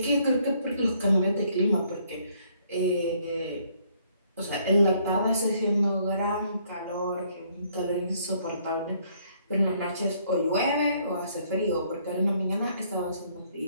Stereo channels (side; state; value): both; inverted; correlation -0.66